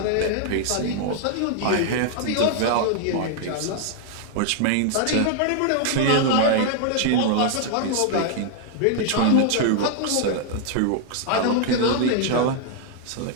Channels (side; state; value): both; different; correlation 0.00